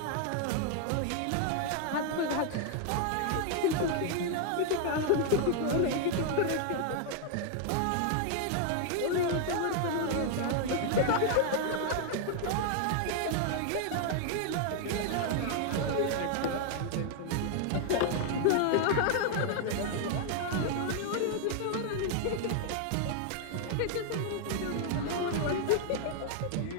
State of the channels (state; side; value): different; both; correlation 0.00